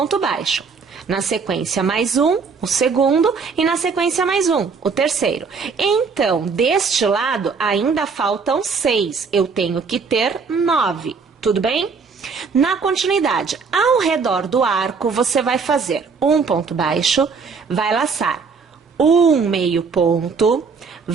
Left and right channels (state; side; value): quieter; left; 5.2 dB